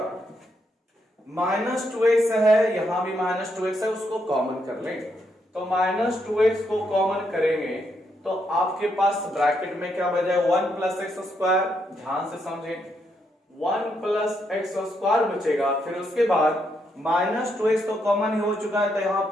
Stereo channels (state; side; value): normal; both; correlation 0.78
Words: माइनस 2x है, यहां भी माइनस 2x है, उसको कॉमन कर लेंगे, तो माइनस 2x को कॉमन करेंगे तो आपके पास ब्रैकेट में क्या बचा है 1 प्लस एक्स स्क्वायर, ध्यान से समझें 1 प्लस एक्स स्क्वायर बचेगा, फिर उसके बाद माइनस 2x तो कॉमन ही हो चुका है तो यहां